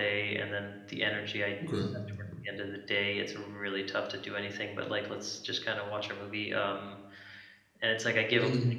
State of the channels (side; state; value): both; identical; correlation 1.00